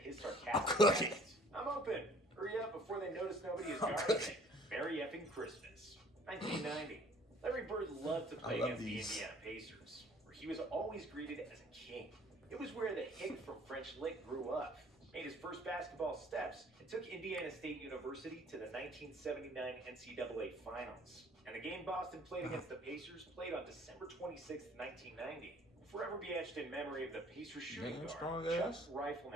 I'm sarcastic cooking. text? I'm open. Hurry up before they notice nobody is guarding me. Merry effing Christmas. 1990. Larry Bird loved to play against the Indiana Pacers, where he was always greeted as a king. It was where the hick from French Lick grew up, made his first basketball steps, and took Indiana State University to the 1979 NCAA Finals. And the game Boston played against the Pacers played on December 26, 1990. Will forever be etched in memory of the Pacers shooting guard, Chuck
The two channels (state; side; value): normal; both; correlation 0.55